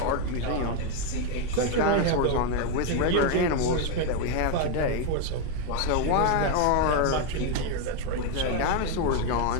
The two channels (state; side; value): different; both; correlation 0.02